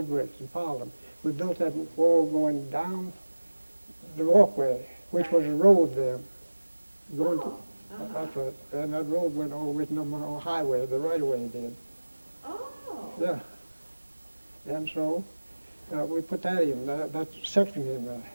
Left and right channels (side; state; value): both; inverted; correlation -1.00